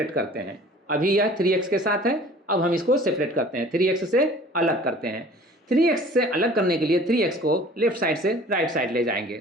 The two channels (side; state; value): both; normal; correlation 0.48